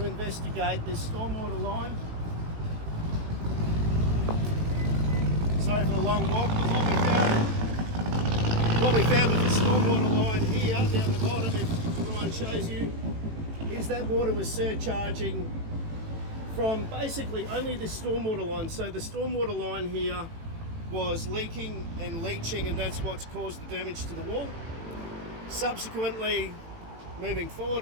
investigate this stormwater line. Sorry for the long walk. What we found with the stormwater line here down the bottom, if Ryan shows you, is that water was surcharging from basically only the stormwater line. So the stormwater line here was leaking and leaching, and that's what's caused the damage to the wall. Subsequently, moving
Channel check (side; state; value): left; late; 18 ms